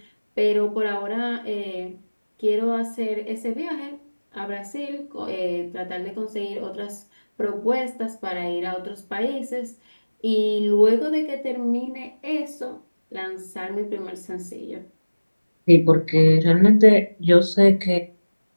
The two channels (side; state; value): both; inverted; correlation -1.00